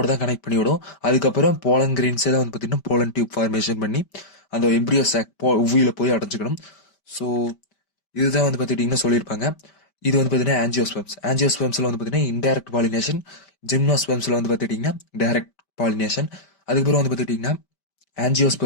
தான் கனெக்ட் பண்ணி விடும். அதுக்கப்புறம் போலன் கிரெயின்ஸே தான் வந்து பார்த்தீங்கன்னா போலன் டியூப் ஃபார்மேஷன் பண்ணி அந்த எம்ப்ரியோ சாக் ஒவியூல போய் அடைஞ்சிக்கணும். ஸோ இதுதான் வந்து பார்த்துக்கிட்டிங்கன்னா சொல்லியிருப்பாங்க. இது வந்து பார்த்தீங்கன்னா ஆஞ்சியோஸ்பெர்ம்ஸில் வந்து பார்த்தீங்கன்னா இன்டைரக்ட் பாலினேஷன். ஜிம்னோஸ்பெர்ம்ஸில் வந்து பார்த்துக்கிட்டிங்கன்னா டைரக்ட் பாலினேஷன். அதுக்கப்புறம் வந்து பார்த்துக்கிட்டிங்கன்னா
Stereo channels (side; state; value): right; late; 5.1 ms